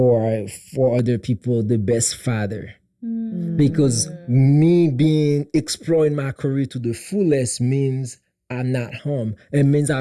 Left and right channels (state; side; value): identical; both; correlation 1.00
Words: for other people the best father. Because me being exploring my career to the fullest means I'm not home. It means